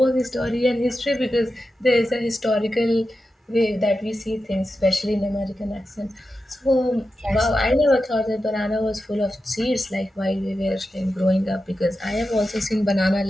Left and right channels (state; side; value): normal; both; correlation 0.91